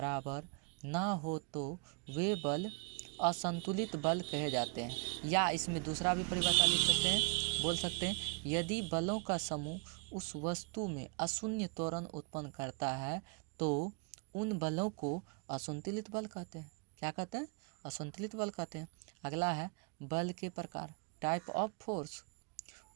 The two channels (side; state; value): left; quieter; 32.8 dB